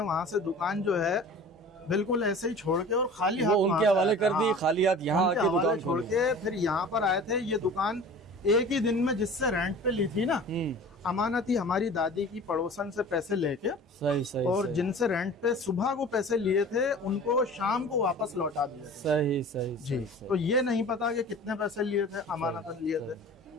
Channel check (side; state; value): both; normal; correlation 0.41